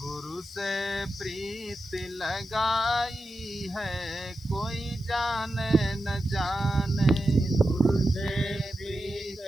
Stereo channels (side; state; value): left; noise; hiss, 27 dB below the sound